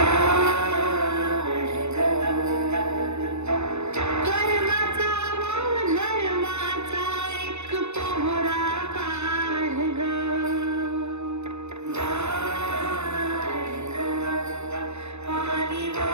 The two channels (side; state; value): left; late; 0.81 ms